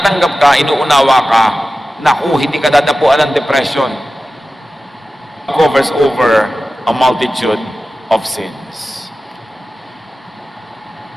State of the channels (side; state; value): both; normal; correlation 0.95